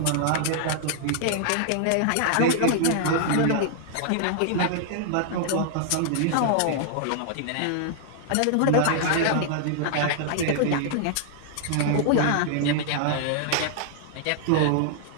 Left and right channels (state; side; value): different; both; correlation -0.01